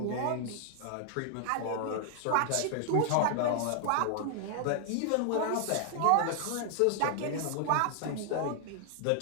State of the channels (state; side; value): different; both; correlation 0.00